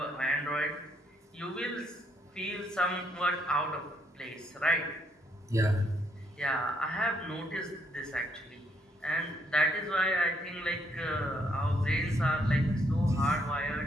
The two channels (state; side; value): normal; both; correlation 0.72